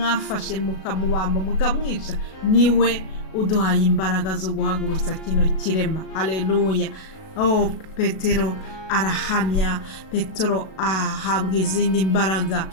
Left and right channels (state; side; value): late; right; 37 ms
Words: mukamubamba mukamwica niwe uduhaye imbaraga zo guhagurutsa kino kirema. Haleluya! Petero arahamya, Petero ahabwa izindi mbaraga.